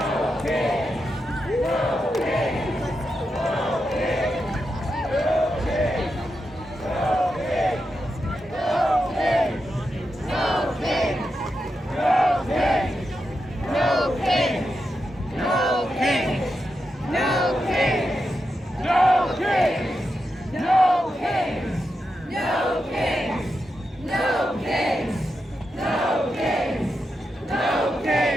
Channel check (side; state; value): both; normal; correlation 0.87